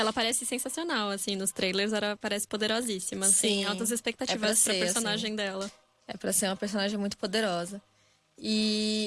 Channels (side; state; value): both; identical; correlation 1.00